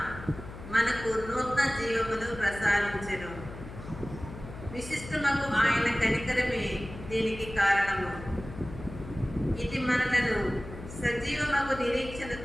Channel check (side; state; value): left; noise; hum, 13 dB below the sound